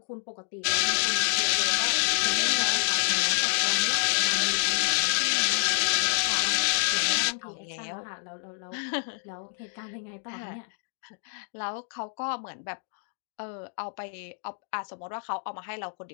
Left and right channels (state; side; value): silent; right; 59 dB below the other